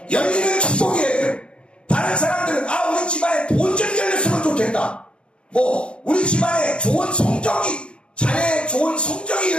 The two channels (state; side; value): late; right; 0.057 ms